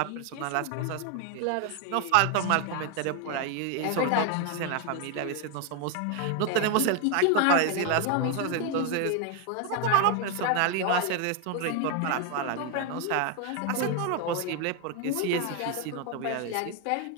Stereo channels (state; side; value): different; both; correlation 0.01